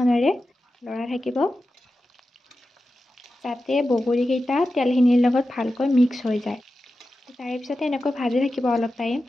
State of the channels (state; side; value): normal; both; correlation 0.92